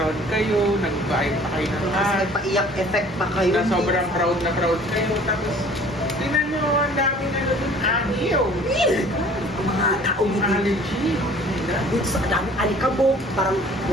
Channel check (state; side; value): normal; both; correlation 0.51